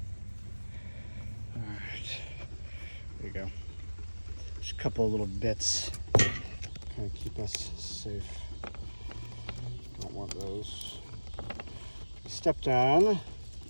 All right, there you go. Just a couple of little bits, kind of keep us safe. Don't want those. Stepped on,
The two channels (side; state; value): both; inverted; correlation -1.00